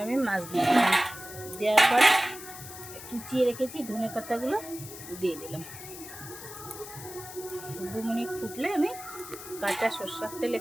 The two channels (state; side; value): noise; left; hiss, 13 dB below the sound